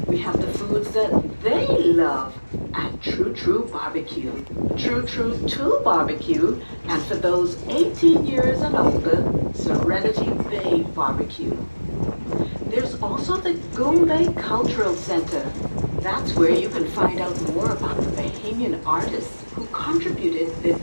we have the foods that they love at True True Barbecue, True True 2 Barbecue, and for those 18 years and older, Serenity Bay Barbecue. There's also the Goombay Cultural Center. That's where you can find out more about the Bahamian artists who contributed their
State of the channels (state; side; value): inverted; both; correlation -1.00